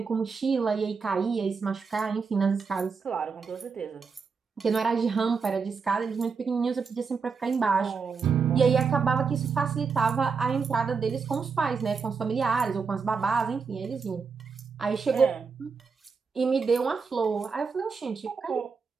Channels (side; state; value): left; quieter; 5.3 dB